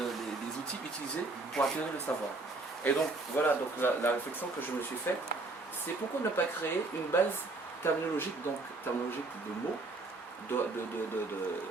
outils utilisés pour acquérir le savoir. Et donc, voilà, donc la réflexion que je me suis faite, c'est pourquoi ne pas créer une base terminologique, donc terminologique de mots,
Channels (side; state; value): left; quieter; 3.3 dB